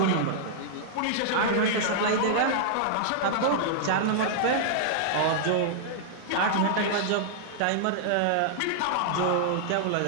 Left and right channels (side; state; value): both; different; correlation -0.01